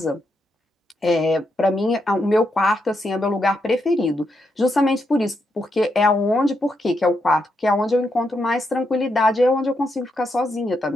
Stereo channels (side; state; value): both; normal; correlation 0.81